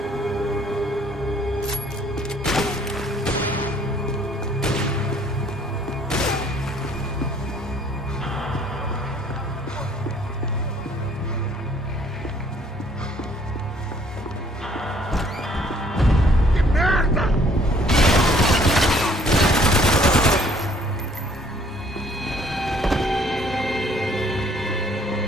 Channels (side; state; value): both; normal; correlation 0.61